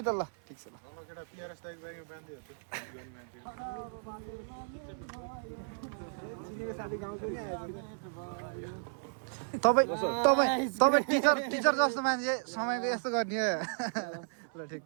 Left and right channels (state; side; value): silent; left; 55 dB below the other